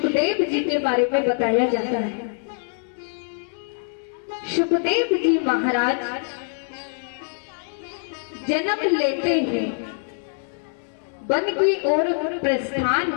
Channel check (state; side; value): silent; right; digital silence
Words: जी के बारे में बताया जाता है। सुखदेव जी महाराज जन्म लेते ही वन की ओर प्रस्थान